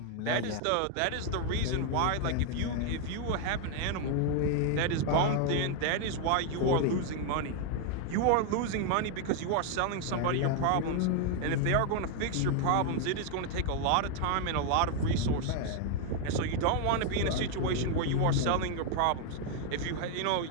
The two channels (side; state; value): both; different; correlation 0.00